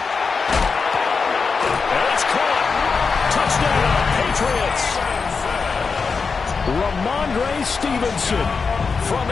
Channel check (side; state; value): right; quieter; 5.0 dB